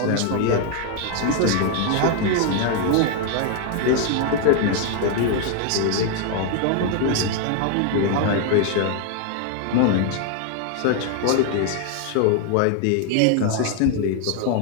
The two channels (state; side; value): different; both; correlation 0.00